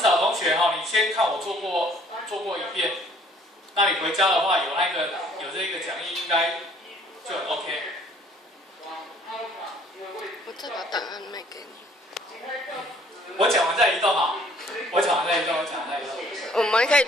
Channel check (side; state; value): both; normal; correlation 0.58